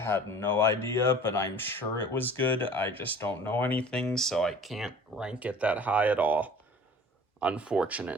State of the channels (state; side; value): normal; both; correlation 0.45